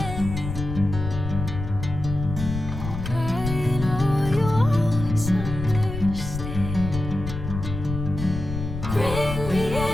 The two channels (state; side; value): noise; left; rumble, 6 dB below the sound